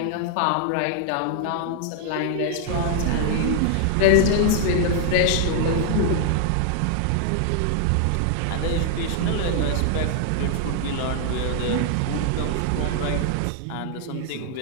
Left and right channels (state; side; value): different; both; correlation 0.00